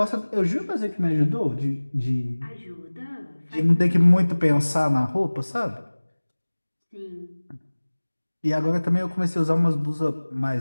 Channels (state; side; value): inverted; both; correlation -1.00